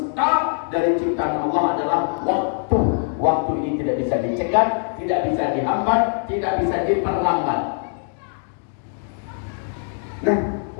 dari ciptaan Allah adalah waktu. Waktu ini tidak bisa dicegah, tidak bisa dihambat, tidak bisa diperlambat. Nah,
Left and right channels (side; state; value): right; silent; 59 dB below the other